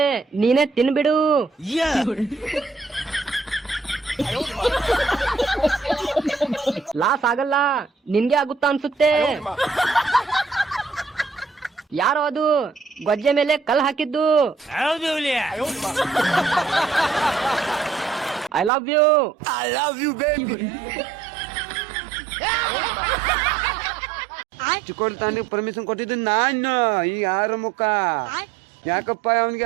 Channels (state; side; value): drops out; left; at 18.7 s